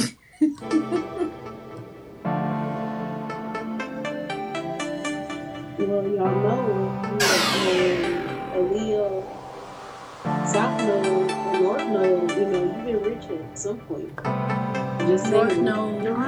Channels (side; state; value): both; identical; correlation 1.00